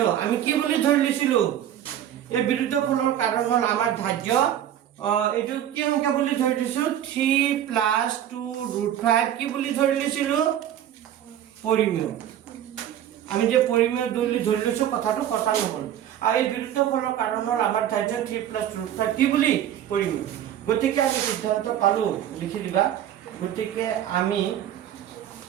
আমি কি বুলি ধৰি লৈছিলো এই বিৰুদ্ধ ফলৰ কাৰণ হ'ল আমাৰ ধাৰ্য এটো কি সংখ্যা বুলি ধৰি লৈছো 3 + 2 √5 কি বুলি ধৰি লৈছিলো পৰিমেয় আমি যে পৰিমেয় বুলি ধৰি লৈছো কথাটো কথা নহল আৰু এই বিৰুদ্ধ ফলৰ কাৰণ হ'ল আমাৰ ধাৰ্য 3 + √5 কি বুলি পৰিমেয় গতিকে আমি সিদ্ধান্ত পালো লিখি দিবা গতিকে আমি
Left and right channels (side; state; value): left; quieter; 10.9 dB